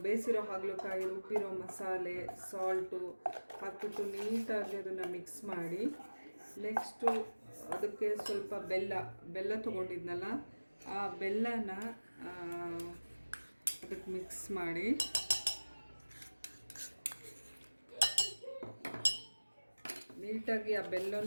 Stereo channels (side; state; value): both; inverted; correlation -1.00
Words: ಬೇಯಿಸಿರೋ ಹಾಗಲಕಾಯಿ, ರುಬ್ಬಿರೋ ಮಸಾಲೆ, ಸಾಲ್ಟು ಹಾಕ್ಬಿಟ್ಟು ನೀಟಾಗಿ ಅದನ್ನು ಮಿಕ್ಸ್ ಮಾಡಿ, ನೆಕ್ಸ್ಟು ಅದಕ್ಕೆ ಸ್ವಲ್ಪ ಬೆಲ್ಲ ತೊಗೊಂಡಿದ್ನಲ್ಲ, ಆ ಬೆಲ್ಲನ ಅದಕ್ಕೆ ಮಿಕ್ಸ್ ಮಾಡಿ, ನೀಟಾಗಿ ಆ